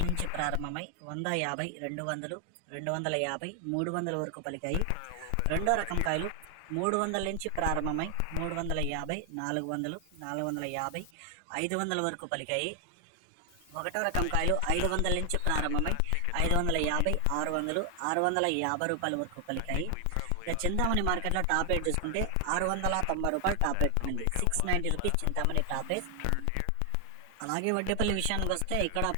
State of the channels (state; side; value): different; both; correlation 0.00